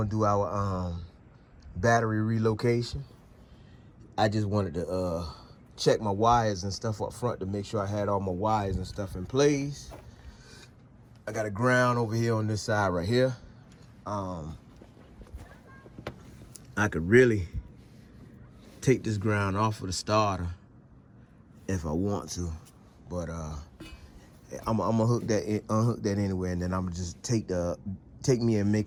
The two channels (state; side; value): identical; both; correlation 1.00